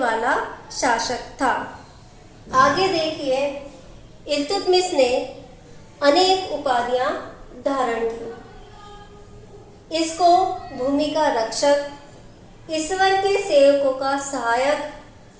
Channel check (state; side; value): identical; both; correlation 1.00